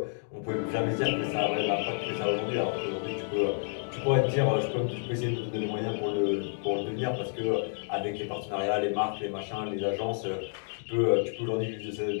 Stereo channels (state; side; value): silent; right; 57 dB below the other